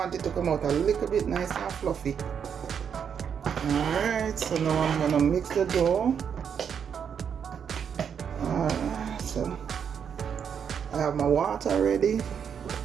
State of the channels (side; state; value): left; quieter; 7.5 dB